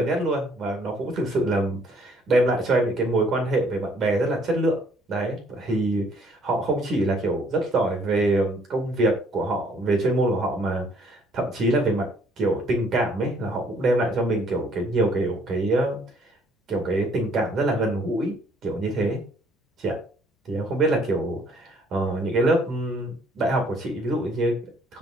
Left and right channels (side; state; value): both; normal; correlation 0.62